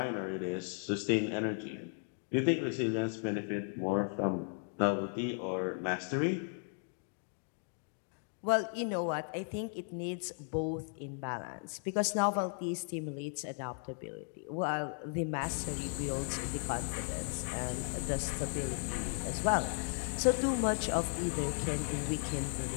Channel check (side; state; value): right; silent; 54 dB below the other